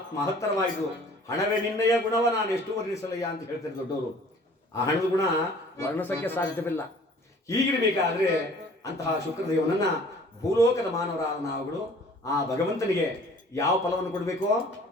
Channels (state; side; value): normal; both; correlation 0.51